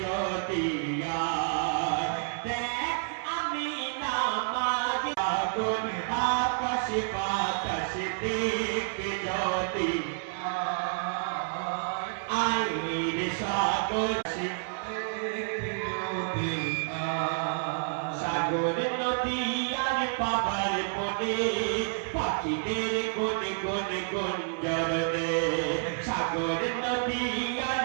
যদি দেখ আমি নামাজ সাগর আকাশ বাতাস দেখবি যদি আইরে সাগর সাগর নদী আর পাবার বনে পাখিদের গুন গুন গুঞ্জরনে সাগর নদী আর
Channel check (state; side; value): silent; left; 58 dB below the other